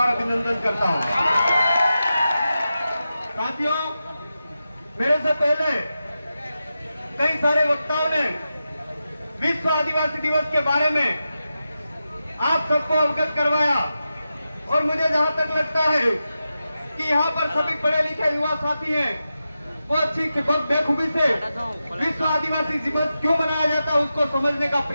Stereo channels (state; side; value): inverted; both; correlation -0.91